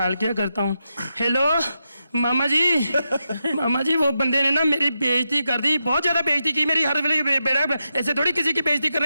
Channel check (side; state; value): both; inverted; correlation -0.87